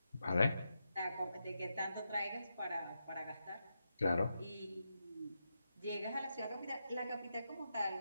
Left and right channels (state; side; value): inverted; both; correlation -0.86